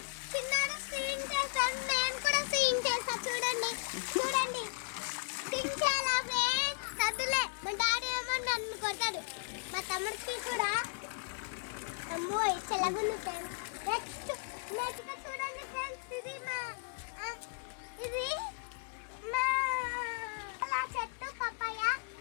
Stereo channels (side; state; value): right; silent; digital silence